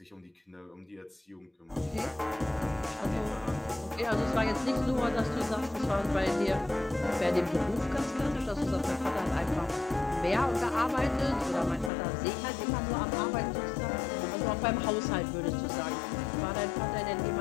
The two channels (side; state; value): right; drops out; at 11.9 s